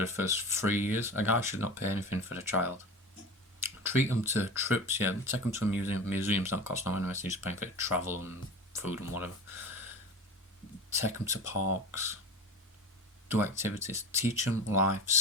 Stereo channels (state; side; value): normal; both; correlation 0.31